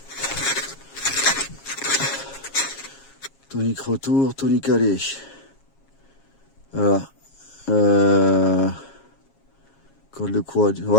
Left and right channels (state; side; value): late; right; 7.3 ms